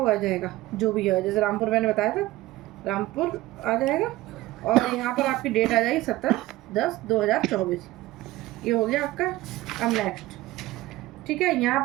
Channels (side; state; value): left; quieter; 17.6 dB